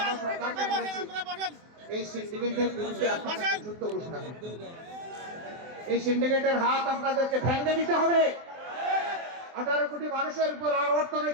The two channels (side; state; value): left; late; 24 ms